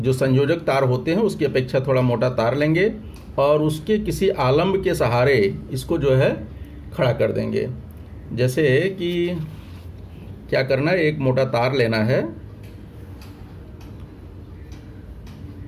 संयोजक तार होते हैं उसकी अपेक्षा थोड़ा मोटा तार लेंगे और उसके किसी आलम्ब के सहारे इसको जो है खड़ा कर देंगे। जैसे कि क्या करना है, एक मोटा तार लेना है,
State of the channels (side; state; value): both; identical; correlation 1.00